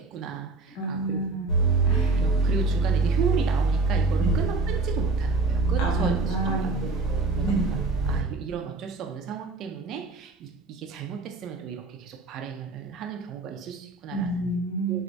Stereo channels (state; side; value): quieter; left; 3.6 dB